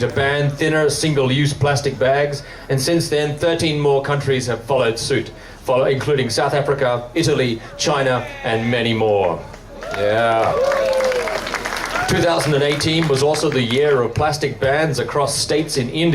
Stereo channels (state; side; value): identical; both; correlation 1.00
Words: to ban thinner single-use plastic bags, and since then 13 more countries have followed suit, including South Africa, Italy, China, and many more. Yeah. 2018 was also the year of plastic bans across states in